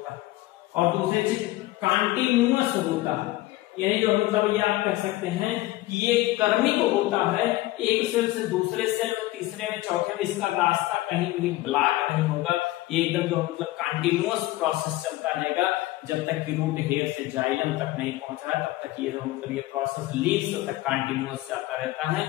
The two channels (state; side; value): quieter; right; 17.6 dB